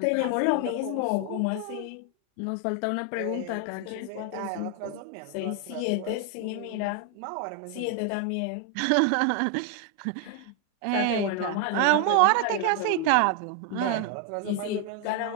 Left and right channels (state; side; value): different; both; correlation 0.01